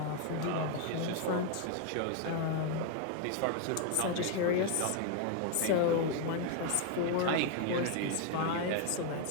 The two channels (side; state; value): both; different; correlation 0.00